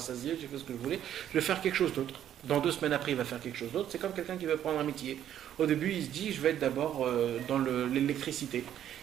j'ai fait ce que je voulais, je vais faire quelque chose d'autre. Dans 2 semaines après, il va faire quelque chose d'autre. C'est comme quelqu'un qui va prendre un métier. Au début, il se dit, je vais être d'abord dans l'électricité.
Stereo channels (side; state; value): left; quieter; 10.7 dB